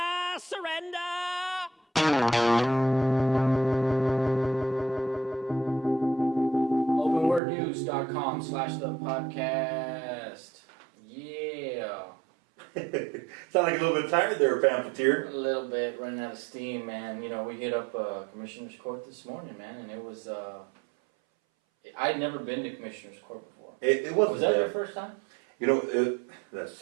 surrender. Openwordnews.com/the podcast. Yeah. Sound like a little bit tired there, Pamphleteer. A little bit, running out of steam, man. You know, we hit up Commissioner's Court this morning, man, and it was, I'd never been to Commissioner's Court before. It wasn't. Was that your first time? You know, that's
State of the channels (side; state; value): left; drops out; at 7.4 s